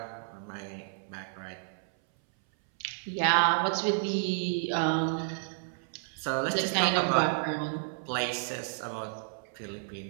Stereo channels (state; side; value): silent; left; 57 dB below the other